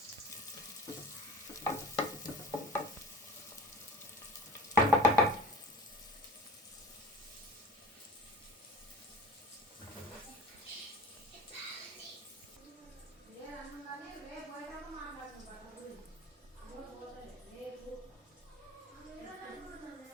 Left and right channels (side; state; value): both; normal; correlation 0.42